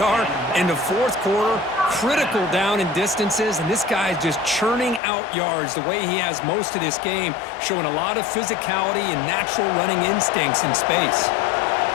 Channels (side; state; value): right; drops out; at 5.0 s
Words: in the 4th quarter, critical down in distances, and this guy is just churning out yards the way he has most of this game, showing a lot of physicality and natural running instincts in space.